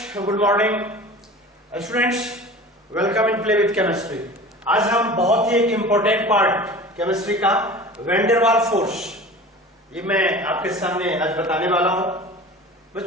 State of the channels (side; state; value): both; normal; correlation 0.38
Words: good morning students, welcome in play with chemistry. आज हम बहुत ही एक इंपॉर्टेंट पार्ट केमिस्ट्री का वैन वाल फोर्स, ये मैं आपके सामने आज बताने वाला हूं।